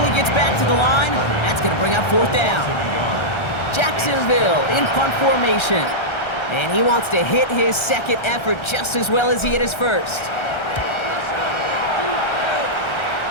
gets back to the line. That's going to bring up 4th down. Jacksonville in punt formation. And he wants to hit his 2nd effort just as well as he hit his 1st.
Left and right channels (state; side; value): late; right; 1.3 ms